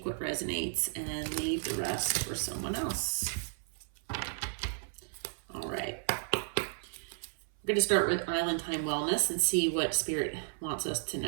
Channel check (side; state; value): left; silent; 55 dB below the other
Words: what resonates and leave the rest for someone else. All right. We're going to start with Island Time Wellness and see what Spirit wants us to